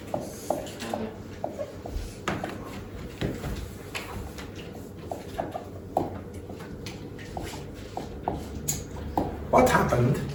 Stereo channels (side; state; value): both; identical; correlation 1.00